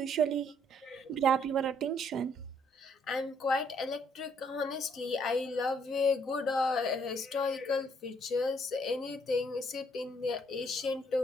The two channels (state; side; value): normal; both; correlation 0.67